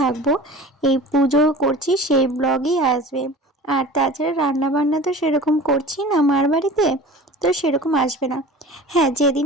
এই পুজো করছি সেই ব্লগই আসবে। আর তাছাড়া রান্নাবান্না তো সেরকম করছি না মার বাড়িতে, তো সেরকম আসবে না। হ্যাঁ,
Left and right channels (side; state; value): both; normal; correlation 0.39